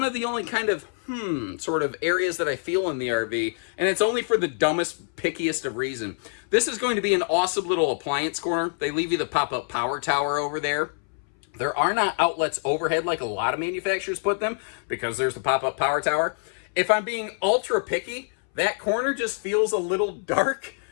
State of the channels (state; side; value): silent; right; 61 dB below the other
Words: of the only kind of, sort of areas that I feel in the RV, and it's only for the dumbest, pickiest of reason. This is going to be an awesome little appliance corner. They leave you the pop-up power tower over there. There are not outlets overhead like a lot of manufacturers put them, because there's the pop-up power tower. If I'm being ultra picky, that corner just feels a little dark.